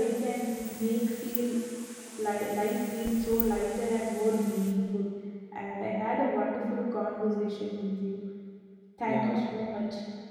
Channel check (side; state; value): both; identical; correlation 1.00